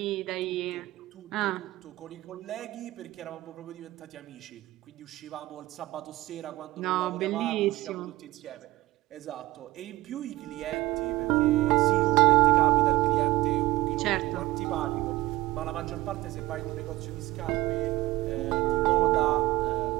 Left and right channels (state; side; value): quieter; left; 18.4 dB